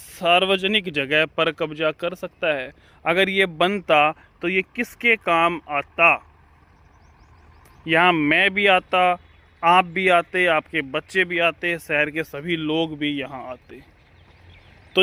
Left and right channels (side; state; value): both; identical; correlation 1.00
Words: जगह पर कब्जा कर सकता है? अगर ये बनता तो ये किसके काम आता? यहाँ मैं भी आता, आप भी आते, आपके बच्चे भी आते, शहर के सभी लोग भी यहाँ आते। तो